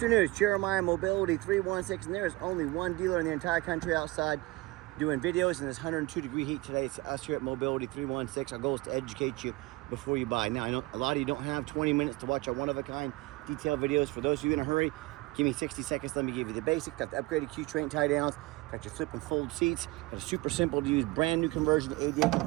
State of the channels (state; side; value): quieter; left; 21.7 dB